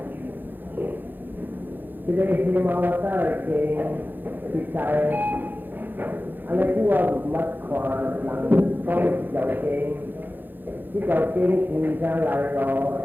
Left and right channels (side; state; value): left; late; 0.090 ms